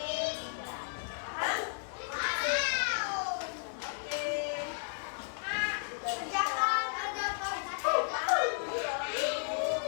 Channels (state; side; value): silent; right; 55 dB below the other